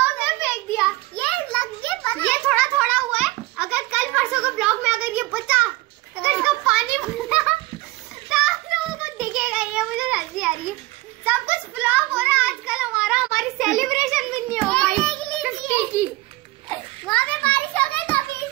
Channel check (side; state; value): left; quieter; 20.1 dB